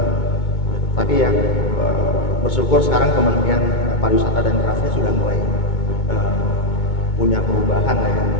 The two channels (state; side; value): late; right; 2.2 ms